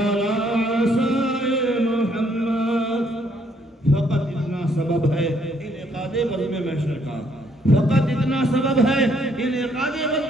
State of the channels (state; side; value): normal; both; correlation 0.68